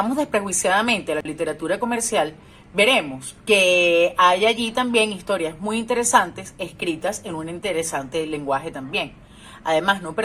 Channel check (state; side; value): identical; both; correlation 1.00